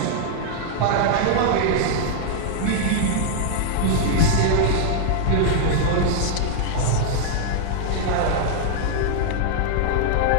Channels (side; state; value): both; different; correlation 0.00